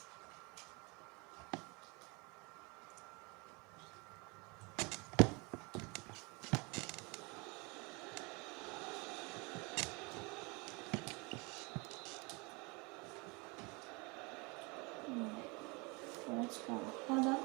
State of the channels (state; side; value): quieter; left; 28.8 dB